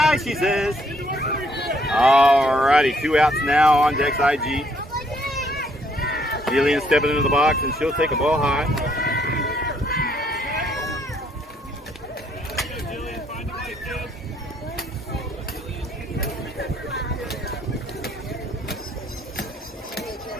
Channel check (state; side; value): normal; both; correlation 0.68